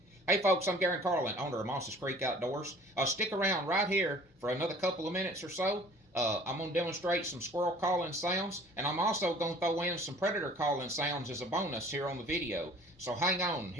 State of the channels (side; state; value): both; normal; correlation 0.50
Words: Hey folks, I'm Garron Carlin, owner of Moss's Creek Outdoors. Stick around right here for another couple of minutes or so. I'm going to demonstrate some squirrel calling sounds, and I'm also going to throw in some predator calling sounds as a bonus here on the video. So hang on,